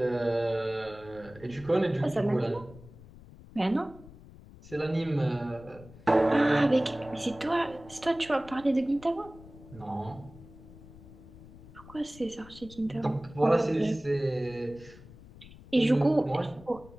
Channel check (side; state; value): left; noise; rumble, 19 dB below the sound